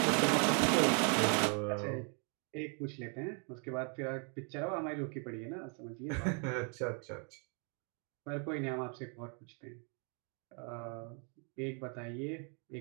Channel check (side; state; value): left; quieter; 38.3 dB